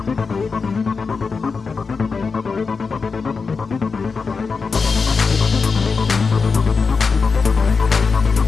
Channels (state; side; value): quieter; right; 4.9 dB